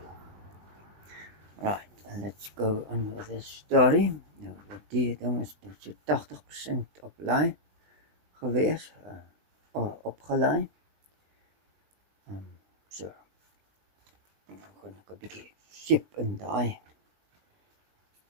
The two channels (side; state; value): left; late; 20 ms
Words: Right, and let's go on with this story. Nou, die ding is so 80% op laai gewees, opgelaai. So, nou gaan ek 'n bietjie seep in daai